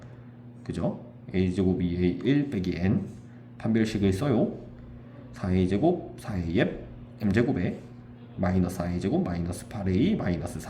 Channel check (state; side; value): identical; both; correlation 1.00